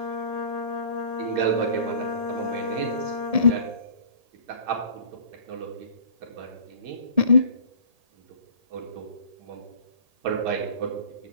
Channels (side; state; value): left; late; 1.8 ms